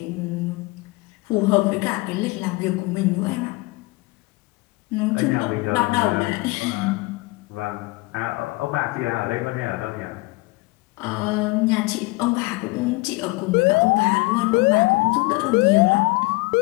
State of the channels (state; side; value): quieter; right; 23.6 dB